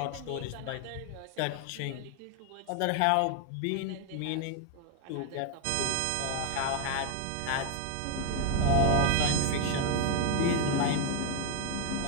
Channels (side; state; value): both; different; correlation 0.01